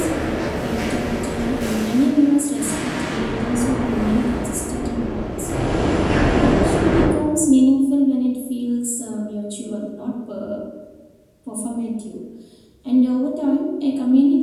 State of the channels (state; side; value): identical; both; correlation 1.00